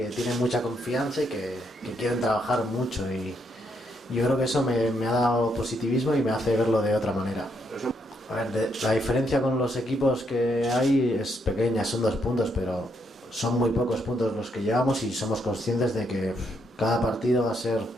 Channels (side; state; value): both; normal; correlation 0.76